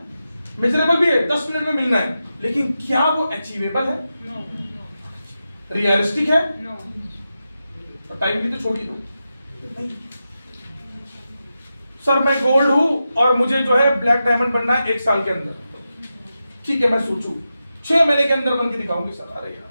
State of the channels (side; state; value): both; inverted; correlation -0.90